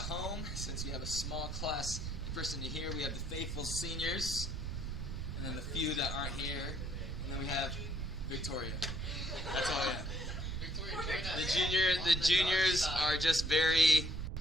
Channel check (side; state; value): right; noise; rumble, 4 dB below the sound